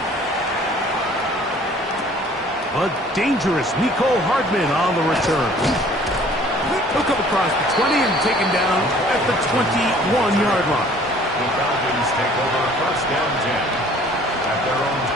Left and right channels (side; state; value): both; normal; correlation 0.54